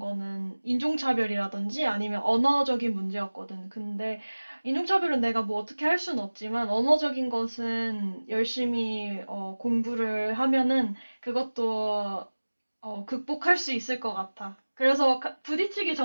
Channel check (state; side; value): inverted; both; correlation -1.00